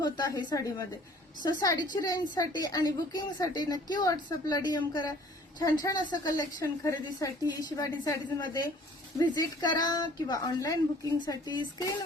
आहे साडीमध्ये. सो साडीची रेंजसाठी आणि बुकिंगसाठी नक्की व्हॉट्सअपला डीएम करा. छान छान असं कलेक्शन खरेदीसाठी शिवानी साडीज मध्ये व्हिजिट करा किंवा ऑनलाईन बुकिंगसाठी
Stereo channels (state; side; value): normal; both; correlation 0.54